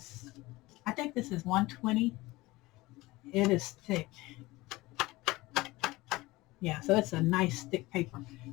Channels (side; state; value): right; quieter; 20.2 dB